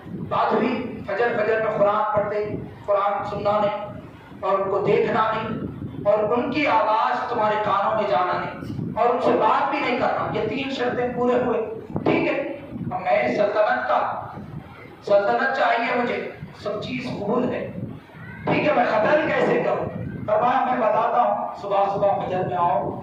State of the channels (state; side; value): identical; both; correlation 1.00